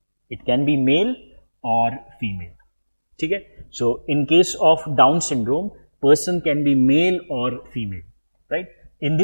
It can be male or female. Okay? So in case of Down syndrome, person can be male or female, right? In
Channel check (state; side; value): inverted; both; correlation -1.00